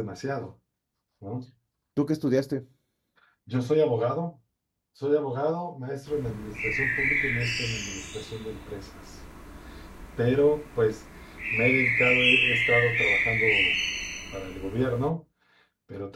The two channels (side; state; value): both; identical; correlation 1.00